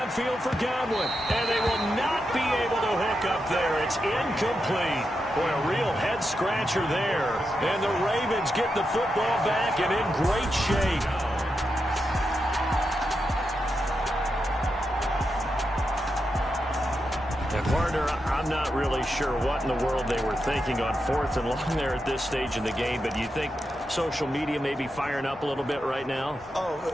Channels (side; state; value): both; normal; correlation 0.87